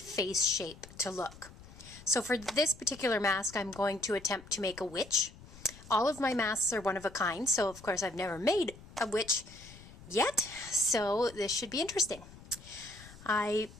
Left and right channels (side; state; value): left; noise; rumble, 19 dB below the sound